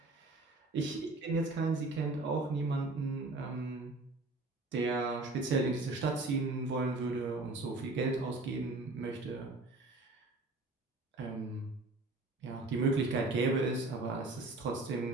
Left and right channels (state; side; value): quieter; left; 3.1 dB